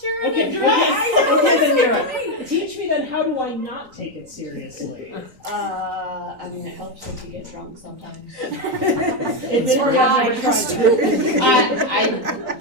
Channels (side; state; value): left; late; 3.9 ms